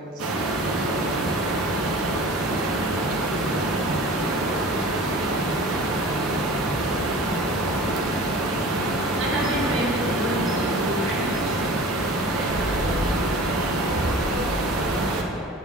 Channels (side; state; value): both; normal; correlation 0.40